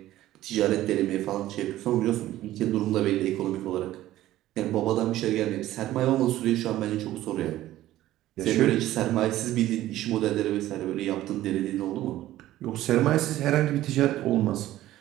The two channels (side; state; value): left; quieter; 14.6 dB